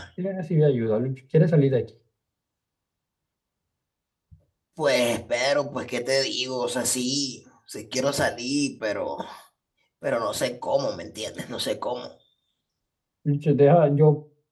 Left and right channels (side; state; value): both; identical; correlation 1.00